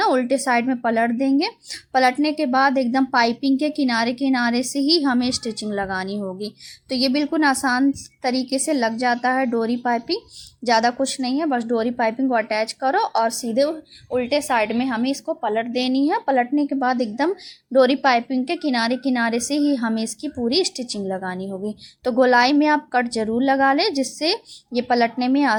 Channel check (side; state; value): both; identical; correlation 1.00